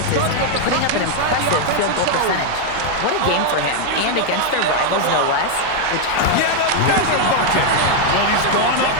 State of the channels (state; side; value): different; both; correlation 0.01